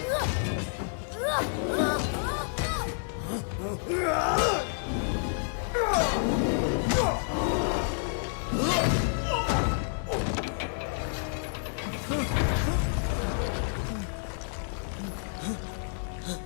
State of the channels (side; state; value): right; silent; 58 dB below the other